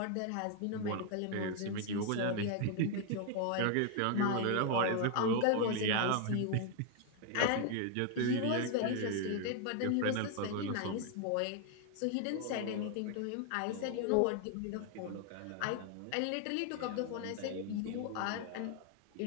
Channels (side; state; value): both; different; correlation 0.01